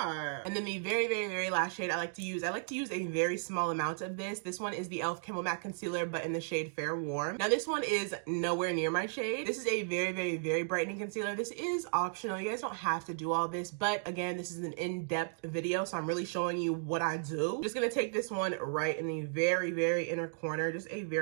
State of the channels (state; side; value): silent; left; digital silence